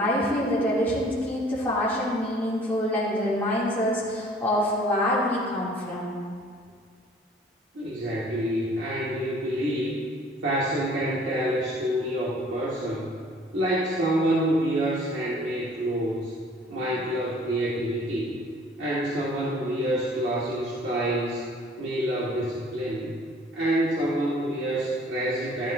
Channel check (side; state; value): both; normal; correlation 0.54